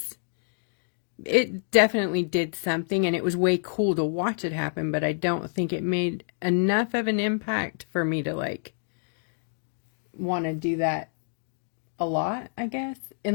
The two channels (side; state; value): right; silent; digital silence